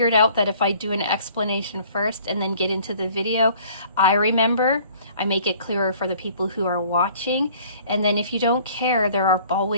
out that if I do an explanation first and then get into the video, I remember, I make it clearer for the people who are watching. And then if you don't care, there are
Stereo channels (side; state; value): both; inverted; correlation -0.54